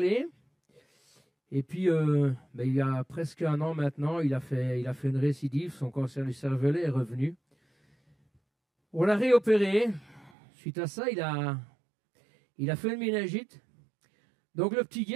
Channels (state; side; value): drops out; left; at 10.3 s